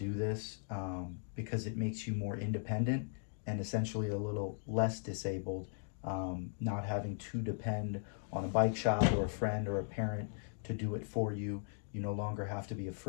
this because it makes you more independent and essentially a little less disabled, not having to depend on a bike shop or a friend or a parent to do it for you. You no longer have to be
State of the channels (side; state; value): right; silent; digital silence